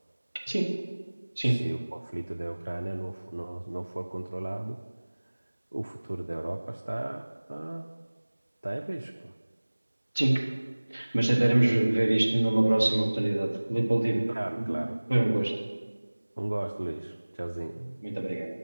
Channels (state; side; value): inverted; both; correlation -1.00